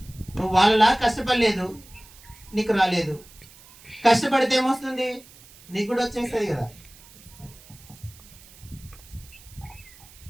నువ్వు వాళ్ళలా కష్టపడలేదు, నీకు రాలేదు. కష్టపడితే ఏమొస్తుంది? నీకు కూడా వచ్చేస్తుంది కదా.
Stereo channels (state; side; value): noise; right; hiss, 23 dB below the sound